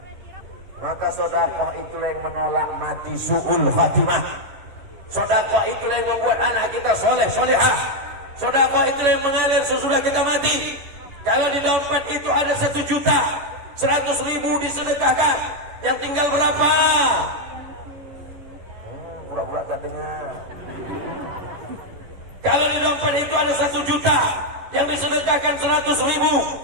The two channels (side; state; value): left; late; 11 ms